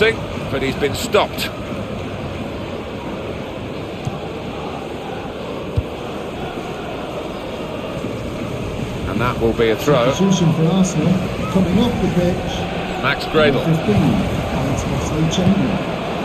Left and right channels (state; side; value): identical; both; correlation 1.00